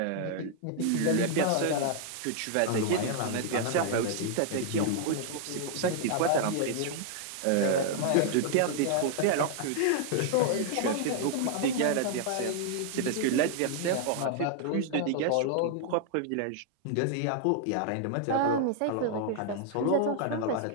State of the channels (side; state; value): both; different; correlation 0.00